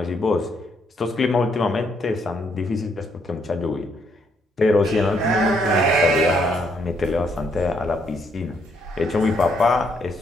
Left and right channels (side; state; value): both; normal; correlation 0.73